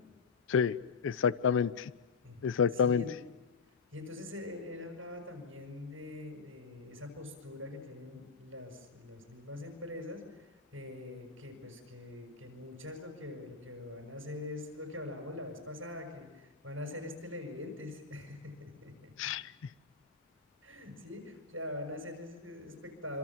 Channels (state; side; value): quieter; right; 5.4 dB